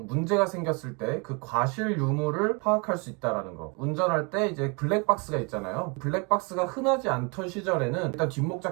문제가 생겼을 때 그 과실 유무를 파악할 수 있다라는 거. 운전할 때 이제 블랙박스가 있잖아요. 블랙박스가 흔하지 않던 시절에는 일단 뒷목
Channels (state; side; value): quieter; left; 32.0 dB